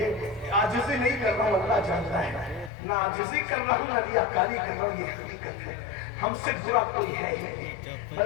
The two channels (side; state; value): right; drops out; at 2.7 s